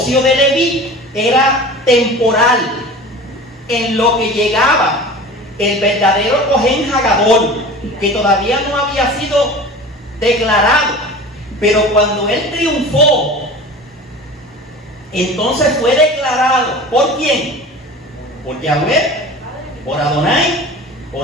de Leví era temporal, en lo que llegaba el verdadero Cohen Hagadol, que todavía no había sido declarado. Pero cuando él triunfó, entonces fue declarado. ¿Por quién? Por Yahweh, por Adonai,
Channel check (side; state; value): both; normal; correlation 0.37